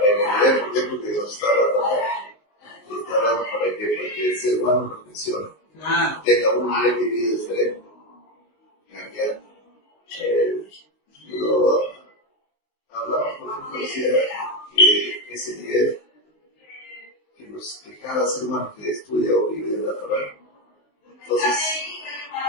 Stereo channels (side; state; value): right; late; 19 ms